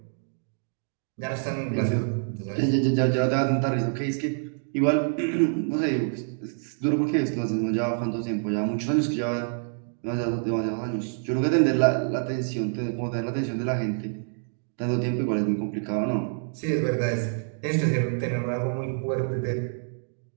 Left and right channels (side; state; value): left; silent; digital silence